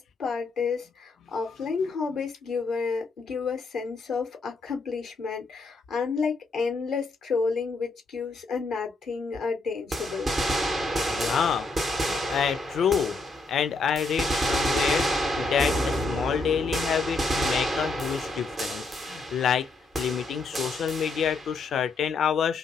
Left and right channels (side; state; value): right; quieter; 3.6 dB